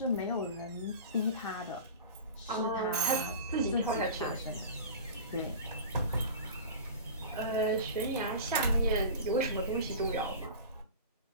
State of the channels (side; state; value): both; inverted; correlation -0.34